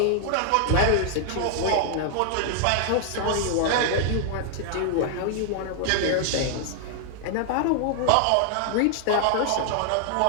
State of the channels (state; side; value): different; both; correlation -0.01